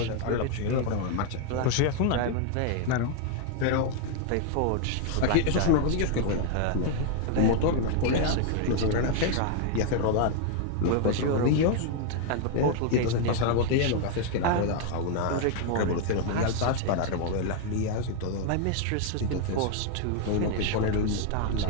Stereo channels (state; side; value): different; both; correlation 0.00